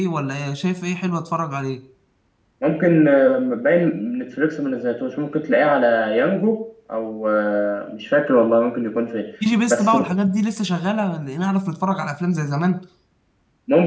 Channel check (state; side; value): identical; both; correlation 1.00